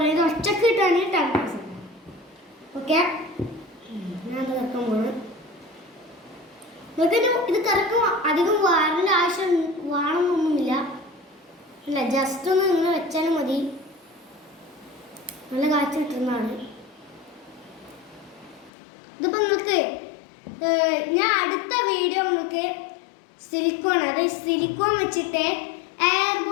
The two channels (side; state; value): right; drops out; at 18.7 s